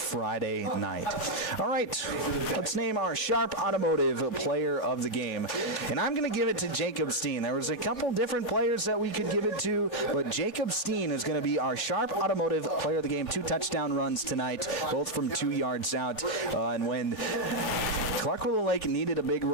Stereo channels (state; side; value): late; right; 3.6 ms